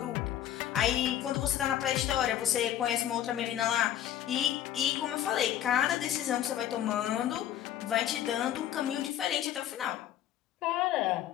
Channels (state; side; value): quieter; right; 11.5 dB